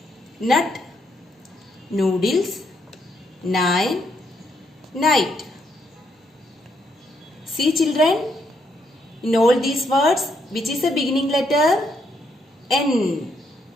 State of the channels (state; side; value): normal; both; correlation 0.75